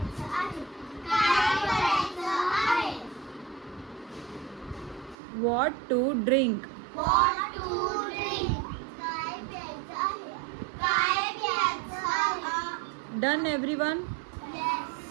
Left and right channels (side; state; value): left; drops out; at 5.2 s